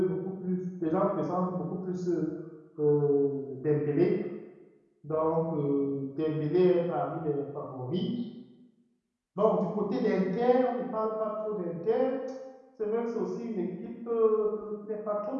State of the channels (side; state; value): both; identical; correlation 1.00